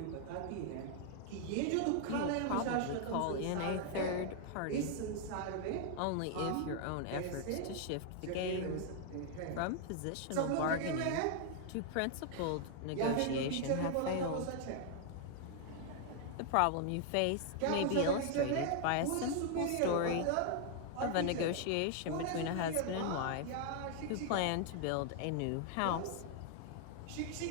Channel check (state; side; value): different; both; correlation 0.00